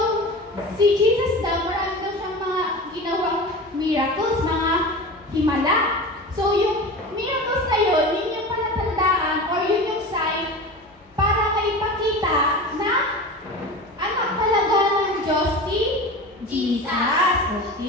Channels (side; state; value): both; normal; correlation 0.31